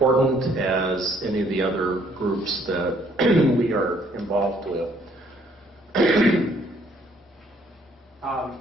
as any of the other groups that we are involved with.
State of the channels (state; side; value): normal; both; correlation 0.64